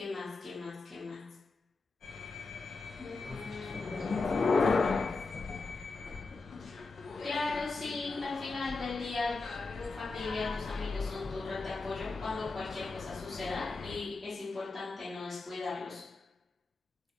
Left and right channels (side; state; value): right; quieter; 3.8 dB